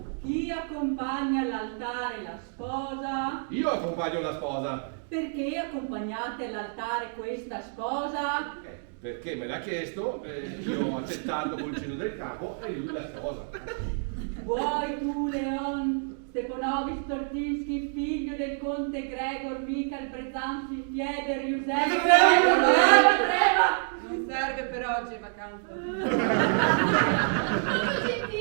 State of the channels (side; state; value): left; silent; 59 dB below the other